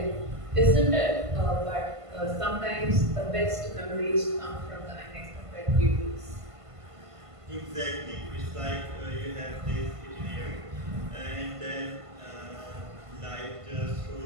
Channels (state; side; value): late; left; 1.5 ms